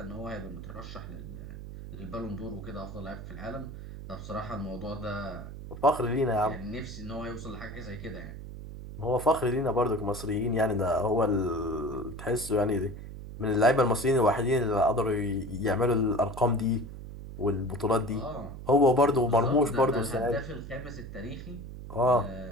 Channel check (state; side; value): noise; right; hum, 11 dB below the sound